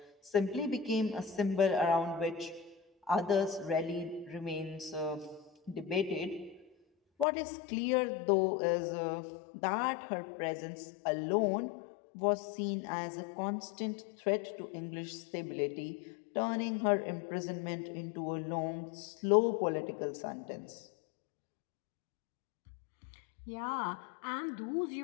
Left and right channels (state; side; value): drops out; right; at 7.2 s